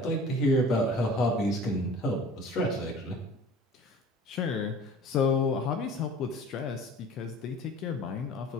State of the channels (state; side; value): normal; both; correlation 0.44